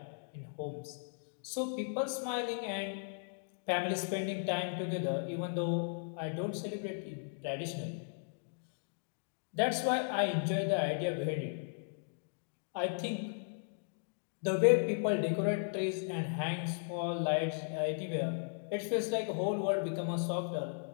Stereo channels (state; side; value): silent; right; digital silence